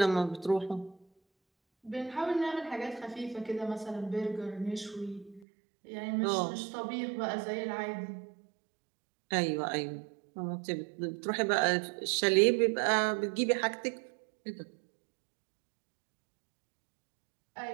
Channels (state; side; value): drops out; left; at 5.5 s